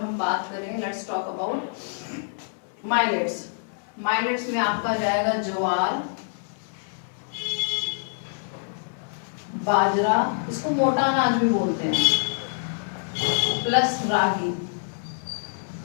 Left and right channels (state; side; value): silent; right; digital silence